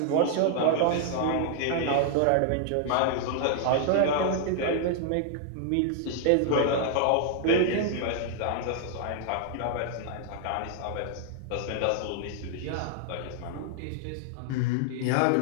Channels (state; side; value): different; both; correlation -0.01